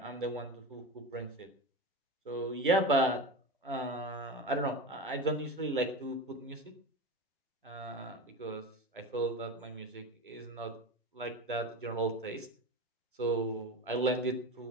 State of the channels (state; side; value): normal; both; correlation 0.25